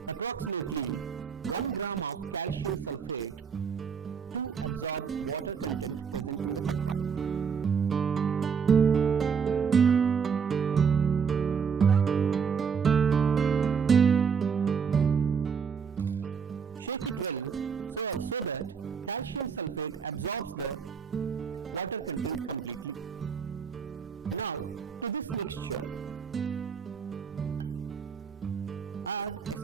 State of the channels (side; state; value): left; quieter; 6.3 dB